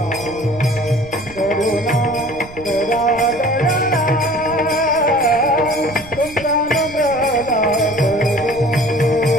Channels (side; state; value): right; noise; rumble, 18 dB below the sound